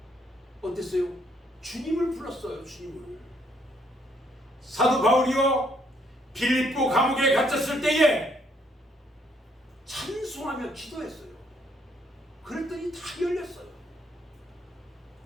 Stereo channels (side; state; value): both; normal; correlation 0.69